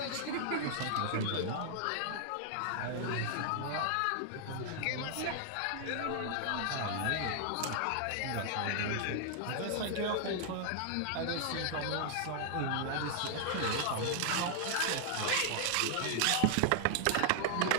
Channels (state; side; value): different; both; correlation 0.00